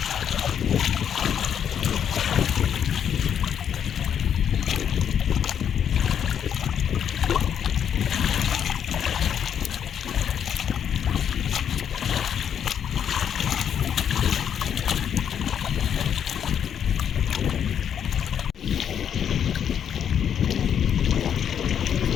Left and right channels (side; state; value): right; quieter; 8.6 dB